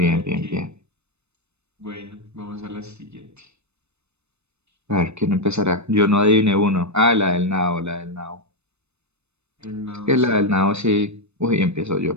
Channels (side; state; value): left; late; 0.81 ms